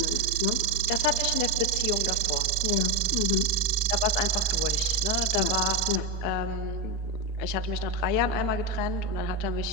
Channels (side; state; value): right; late; 4.3 ms